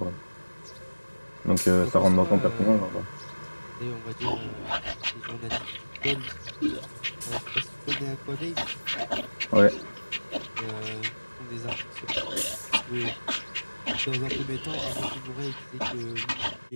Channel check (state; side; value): inverted; both; correlation -1.00